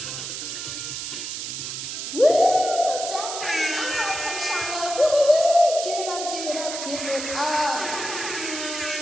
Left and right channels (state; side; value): noise; right; hiss, 6 dB below the sound